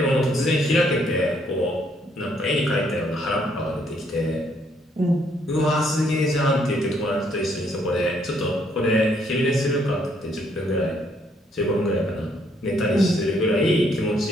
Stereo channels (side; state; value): both; normal; correlation 0.69